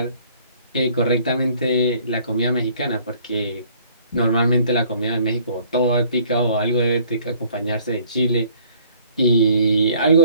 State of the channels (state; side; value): inverted; both; correlation -0.59